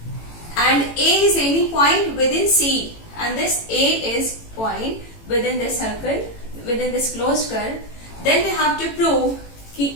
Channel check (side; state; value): right; late; 18 ms